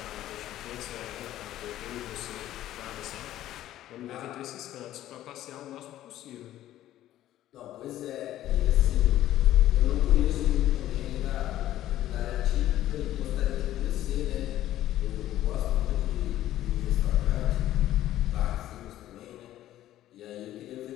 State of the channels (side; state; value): right; quieter; 13.4 dB